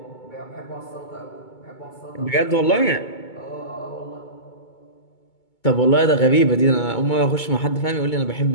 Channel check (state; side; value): late; right; 2.2 ms